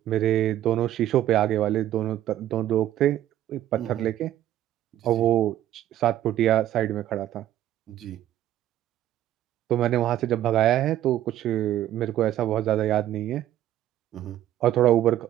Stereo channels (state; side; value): quieter; left; 12.6 dB